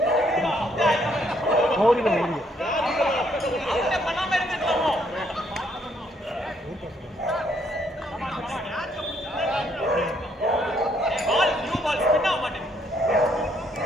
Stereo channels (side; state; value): both; normal; correlation 0.70